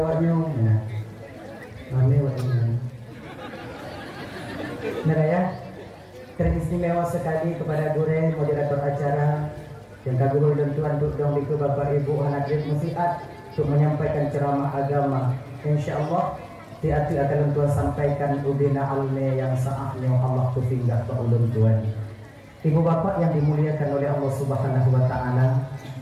kami waktu ya, teristimewa sekali kepada Gure moderator acara yang kagum dan tuan untuk dong itu Bapak Ibu hadirin musiat untuk menyampaikan ceramah agama. Insyaallah hati akan tuan sampaikan ubina alme yang saatnya Allah tufinggah ke ulun tuan. Ibu bapak yang dimuliakan oleh Allah Subhanahu wa taala.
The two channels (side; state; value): both; identical; correlation 1.00